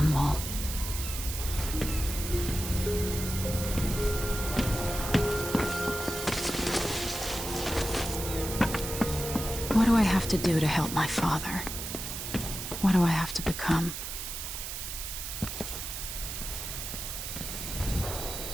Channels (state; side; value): noise; right; hiss, 6 dB below the sound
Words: What do I have to do to help my father? What do I have to become?